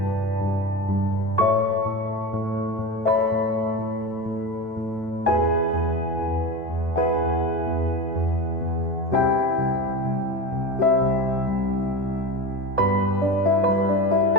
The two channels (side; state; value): both; normal; correlation 0.24